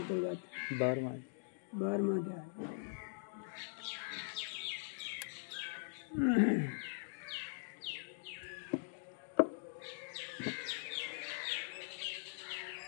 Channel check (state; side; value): silent; right; digital silence